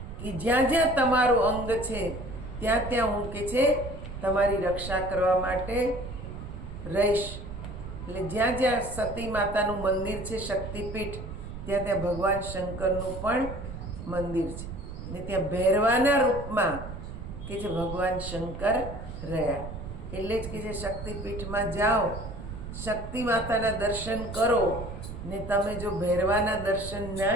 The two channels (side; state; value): right; noise; rumble, 9 dB below the sound